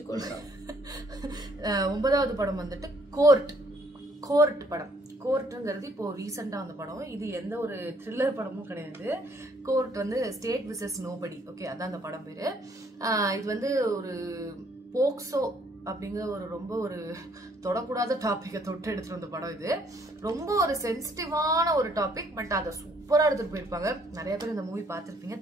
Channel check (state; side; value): normal; both; correlation 0.65